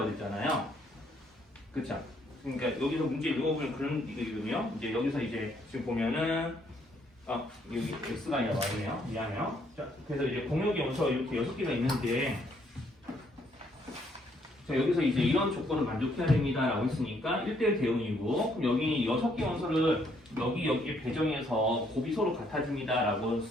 했잖아요. 그쵸? 그러니까 여기서 문제 읽어보면 그런 이거거든요. 이제 여기서 이제 지금 보면은 여기 x가 아니라 y네요. 미안해요. 자, 그래서 이제 공역의 원소가 이렇게 6개가 있는데 자, 여기서 이제 이런 조건을 만족해야 됩니다 라고 했으니까 1대1 대응이고 그럼 여기 6개 원소를 여기에 배정해서 곱이 서로 같아집니다 라고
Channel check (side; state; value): both; normal; correlation 0.69